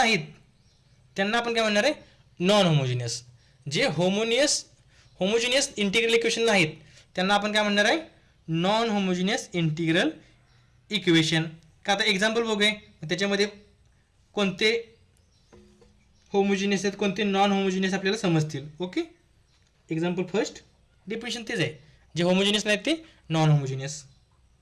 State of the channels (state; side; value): identical; both; correlation 1.00